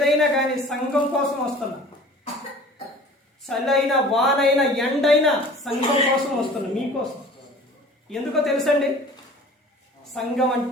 కానీ సంఘం కోసం వస్తున్నా. చలైనా, వానైనా, ఎండైనా సంఘం కోసం వస్తున్నా, మీకోసం. ఎందుకో తెలుసండి, సంఘం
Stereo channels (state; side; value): normal; both; correlation 0.45